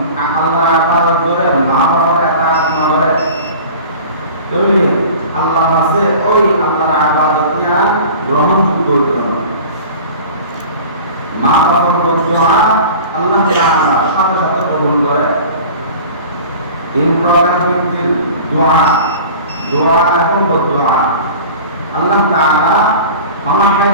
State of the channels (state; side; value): inverted; both; correlation -0.39